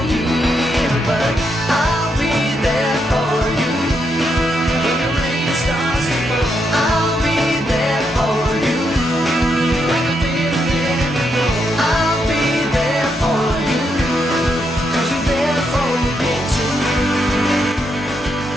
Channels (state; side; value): normal; both; correlation 0.80